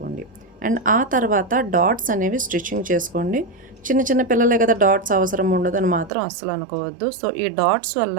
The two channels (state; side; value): drops out; left; at 6.1 s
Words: అండ్ ఆ తర్వాత డాట్స్ అనేవి స్టిచ్చింగ్ చేసుకోండి. చిన్న చిన్న పిల్లలే కదా, డాట్స్ అవసరం ఉండదు అని మాత్రం అస్సలు అనుకోవద్దు. సో ఈ డాట్స్